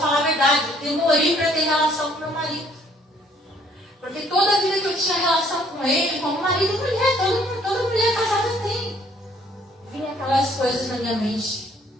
a verdade, eu demorei para ter relação com meu marido. Porque toda a vida que eu tinha relação com ele, como marido e mulher, toda mulher casada tem. Vinha aquelas coisas na minha mente.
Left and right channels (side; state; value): both; normal; correlation 0.62